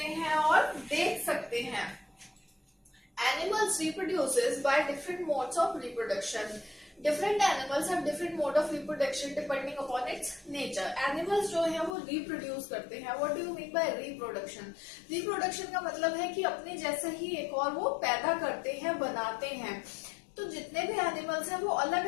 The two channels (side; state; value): right; drops out; at 12.0 s